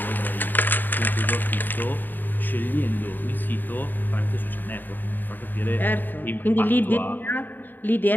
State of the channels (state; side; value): late; right; 0.090 ms